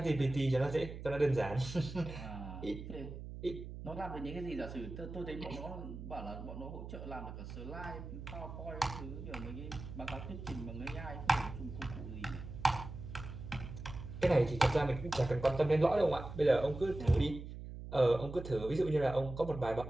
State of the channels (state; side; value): noise; right; hum, 10 dB below the sound